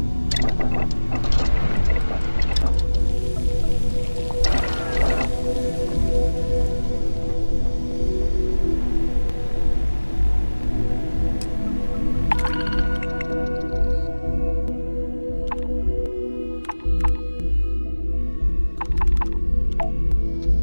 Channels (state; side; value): inverted; both; correlation -1.00